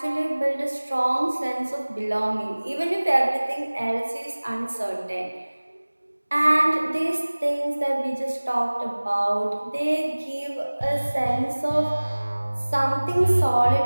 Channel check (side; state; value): both; inverted; correlation -1.00